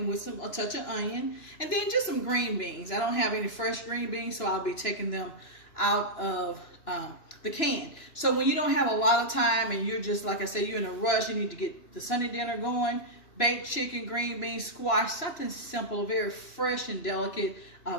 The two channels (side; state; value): right; late; 2.9 ms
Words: with a touch of onion and then just some green beans. I don't have any fresh green beans, so I'll be taking them out of the can. So when you don't have a lot of time and you're just, like I said, you're in a rush, you need to get the Sunday dinner going, baked chicken, green beans, squash, something simple, very fresh and delicate